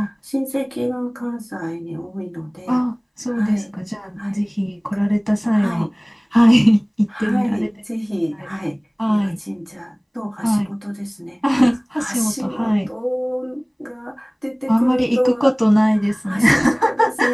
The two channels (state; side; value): identical; both; correlation 1.00